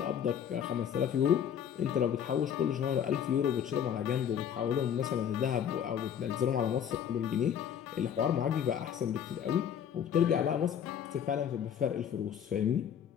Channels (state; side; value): quieter; right; 8.8 dB